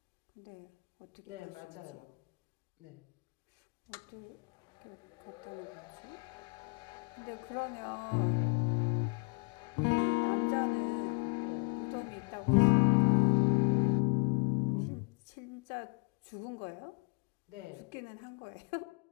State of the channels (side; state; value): right; quieter; 33.8 dB